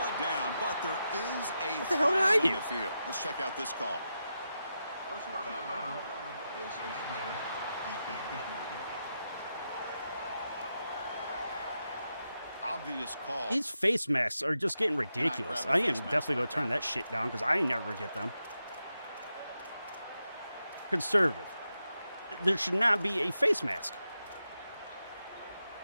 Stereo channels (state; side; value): inverted; both; correlation -0.87